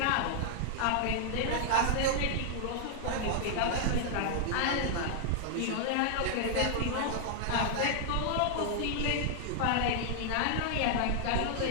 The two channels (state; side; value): different; both; correlation -0.01